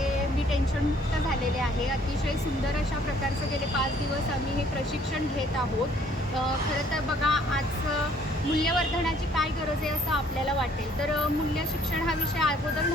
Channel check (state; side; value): normal; both; correlation 0.61